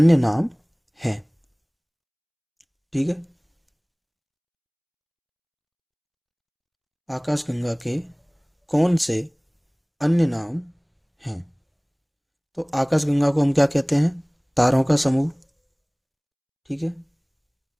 नाम हैं? ठीक है, आकाशगंगा के कौन से अन्य नाम हैं? तो आकाशगंगा को हम क्या कहते हैं? तारों का समूह। ठीक है,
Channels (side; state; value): both; identical; correlation 1.00